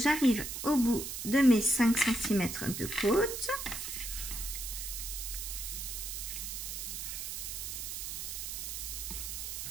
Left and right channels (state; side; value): noise; right; hiss, 5 dB below the sound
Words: au bout de mes 5 cm de côte.